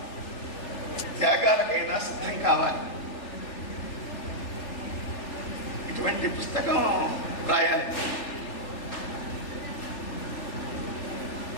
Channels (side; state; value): right; late; 3.4 ms